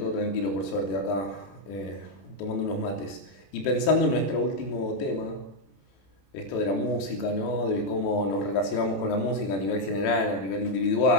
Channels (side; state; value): right; late; 21 ms